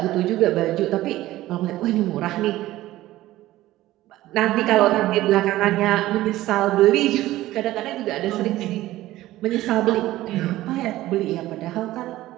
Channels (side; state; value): left; quieter; 15.9 dB